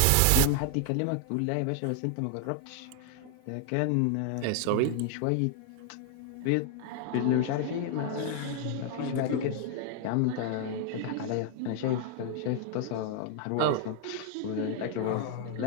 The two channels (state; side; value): different; both; correlation 0.00